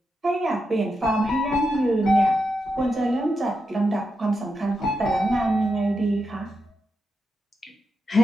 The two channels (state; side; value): normal; both; correlation 0.85